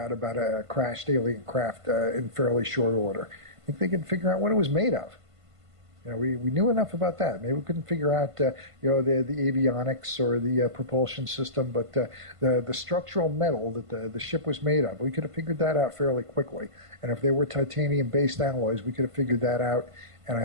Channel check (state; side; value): late; left; 1.5 ms